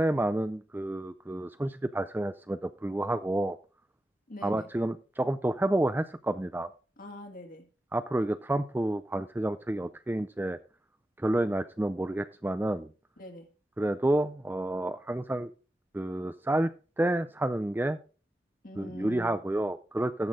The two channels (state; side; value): normal; both; correlation 0.90